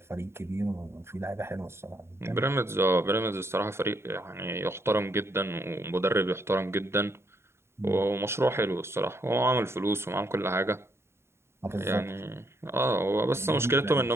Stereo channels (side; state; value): left; late; 0.12 ms